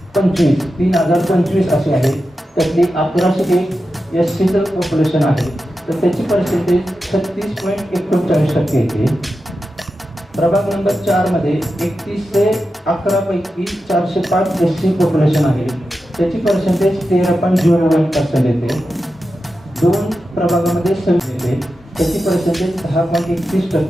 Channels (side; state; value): both; normal; correlation 0.91